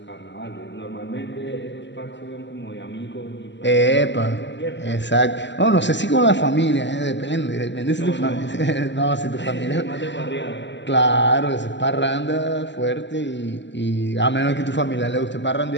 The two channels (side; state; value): right; late; 0.53 ms